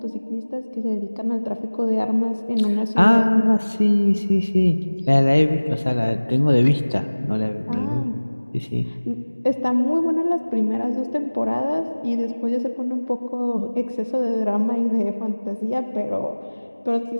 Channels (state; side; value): inverted; both; correlation -1.00